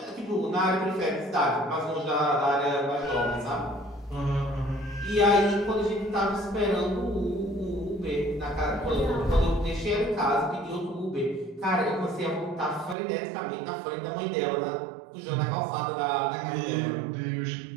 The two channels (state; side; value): drops out; left; at 13.0 s